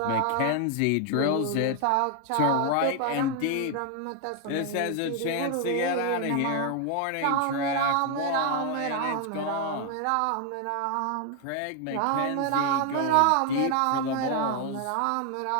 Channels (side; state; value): both; different; correlation 0.01